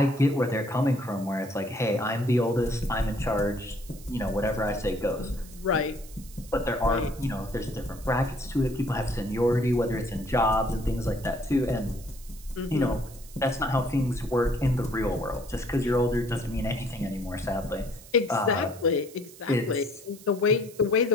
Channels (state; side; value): noise; right; hiss, 20 dB below the sound